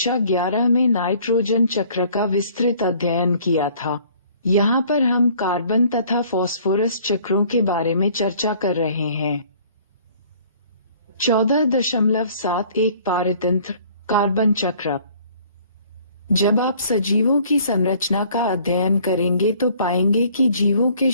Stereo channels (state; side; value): inverted; both; correlation -0.56